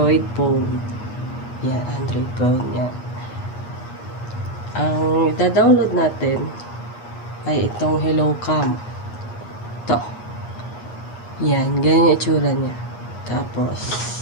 phone. Yan, Android phone. Yan. Ang ida-download natin ay itong Hello Cam. Ito. Yan, ganyan yung itsura niya. Tapos,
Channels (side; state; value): right; late; 8.4 ms